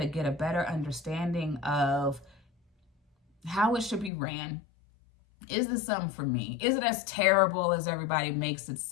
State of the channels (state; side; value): drops out; right; at 4.1 s